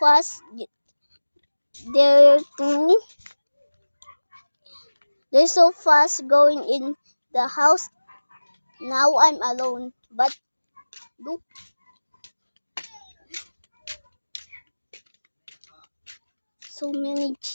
They're so fast going in the house. Now I'm alone, but look. So many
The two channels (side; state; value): both; inverted; correlation -1.00